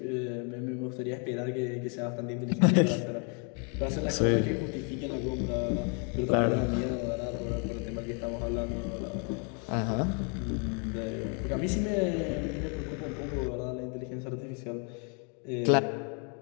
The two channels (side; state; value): right; quieter; 38.2 dB